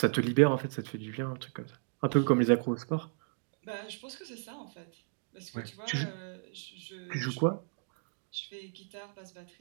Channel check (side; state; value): left; silent; digital silence